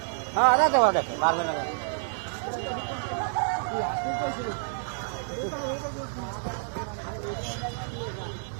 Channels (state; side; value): silent; left; digital silence